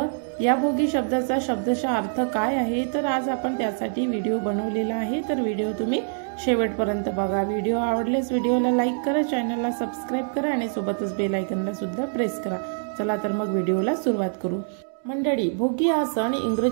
या भोगी शब्दाचा शब्दशः अर्थ काय आहे, तर आज आपण त्यासाठी व्हिडिओ बनवलेला आहे। तर व्हिडिओ तुम्ही शेवटपर्यंत बघा। व्हिडिओ आवडल्यास व्हिडिओला लाईक करा, चॅनलला सबस्क्राइब करा आणि सोबतच बेल आयकॉनला सुद्धा प्रेस करा। चला तर मग व्हिडिओला सुरुवात करू। मंडळी, भोगी हा सण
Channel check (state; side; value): silent; left; digital silence